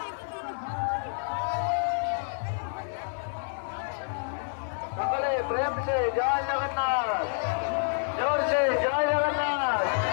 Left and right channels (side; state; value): right; silent; 59 dB below the other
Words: সকলে প্রেম সে জয় জগন্নাথ, জোর সে জয় জগন্নাথ,